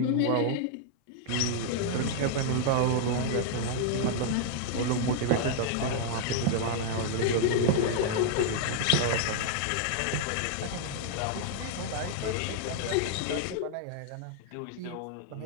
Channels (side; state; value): both; different; correlation -0.01